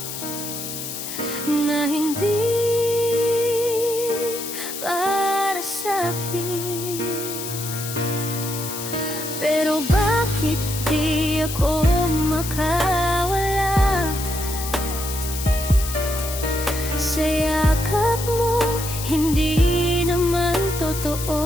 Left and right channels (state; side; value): noise; left; hiss, 7 dB below the sound